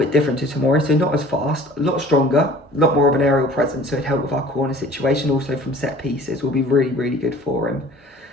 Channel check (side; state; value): both; normal; correlation 0.47